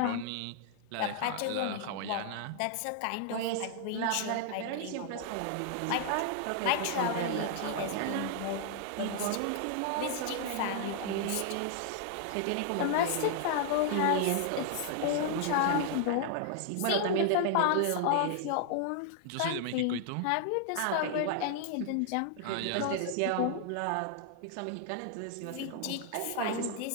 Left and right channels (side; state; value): both; different; correlation 0.00